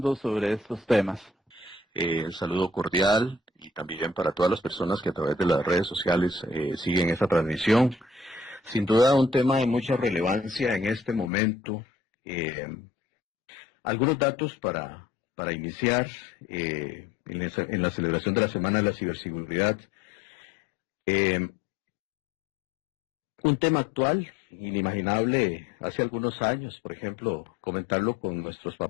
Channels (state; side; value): drops out; right; at 11.3 s